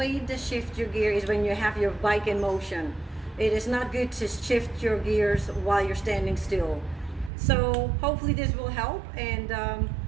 to shift your gear is when you have your bike in motion. It is not good to shift your gears while you're standing still. So hopefully this will help, and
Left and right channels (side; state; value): left; drops out; at 7.3 s